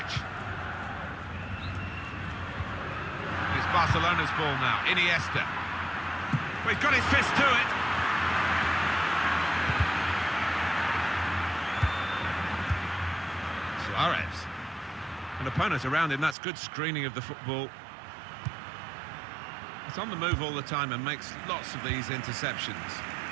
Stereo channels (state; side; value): drops out; left; at 16.4 s